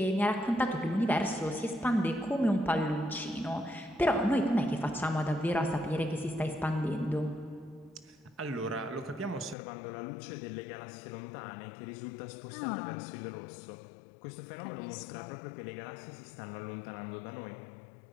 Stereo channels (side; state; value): right; drops out; at 9.6 s